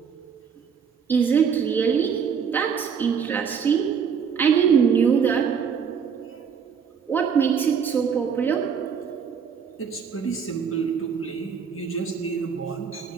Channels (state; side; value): quieter; left; 6.8 dB